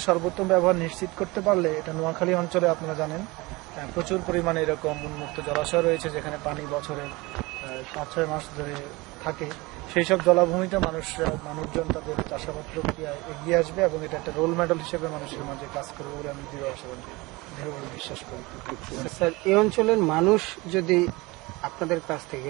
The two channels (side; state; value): left; quieter; 23.1 dB